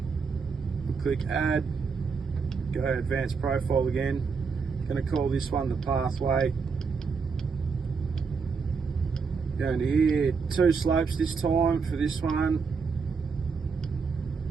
we'll click add, go to advanced profile again. Going to call this one the pathway. Go into here, 2 slopes this time for this one.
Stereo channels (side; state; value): left; quieter; 5.3 dB